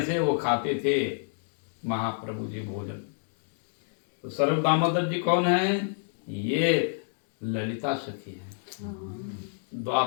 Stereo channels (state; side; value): silent; right; digital silence